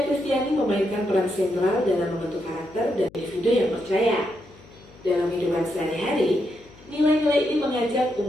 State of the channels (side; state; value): left; noise; hum, 24 dB below the sound